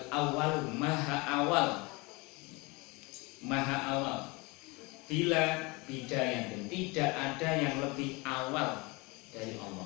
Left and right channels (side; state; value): right; quieter; 26.3 dB